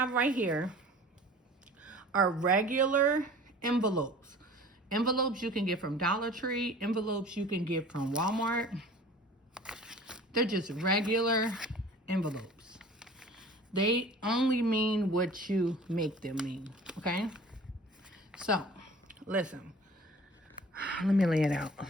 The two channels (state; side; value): normal; both; correlation 0.45